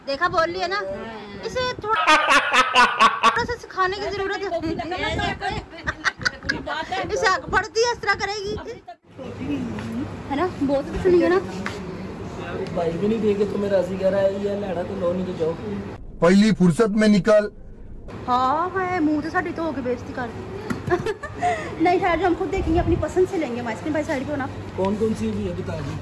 देखा बोल लिया ना, इसे थोड़ा सा सिखाने की जरूरत है। इसे आगे बढ़ती है इस तरह करेगी है ना, बहुत कुछ सुनिए ना। भाई भी नहीं देखे तो मेरा राजी कह रहा है, ये लड़ा तो लो नहीं जाओ पहली फुर्सत में निकल। हाँ है मुंह तो साड़ी तो होके बेइज्जती कर दी। नहीं ठहर जो हम खुद देखेंगे, अपनी पसंद से लेंगे। आइसक्रीम भाई साइड पे होना। कौन कौन सी भी है बता दी।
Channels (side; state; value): both; identical; correlation 1.00